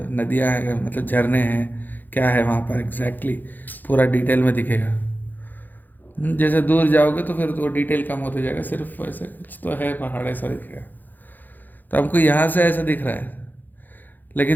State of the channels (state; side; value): late; right; 0.086 ms